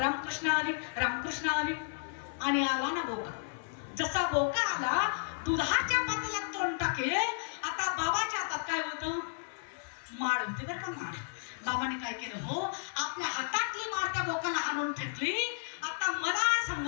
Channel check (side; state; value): right; silent; 56 dB below the other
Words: हरी रामकृष्ण हरी. आणि आला ना बोका. जसा बोका आला दुधाच्या पातेल्यात तोंड टाकेल. आता बाबाच्या हातात काय होतं? माळ होती बरं का. माळ बाबाने काय केलं हो आपल्या हातातली माळ त्या बोकाला आणून फेकली. आता मला